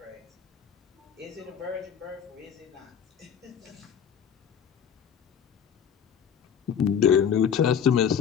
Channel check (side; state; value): right; quieter; 7.8 dB